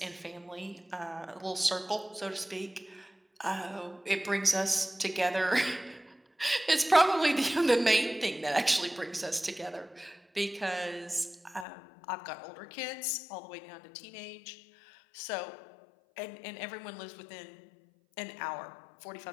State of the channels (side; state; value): right; drops out; at 11.7 s